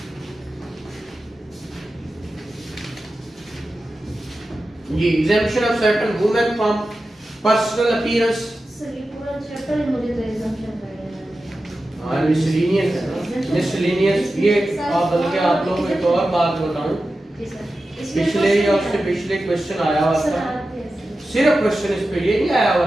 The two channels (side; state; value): both; normal; correlation 0.93